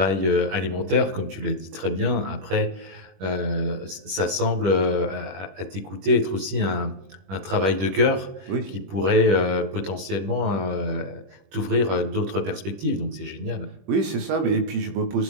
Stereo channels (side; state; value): left; late; 21 ms